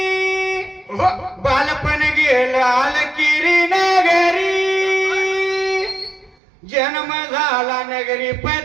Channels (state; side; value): drops out; left; at 6.4 s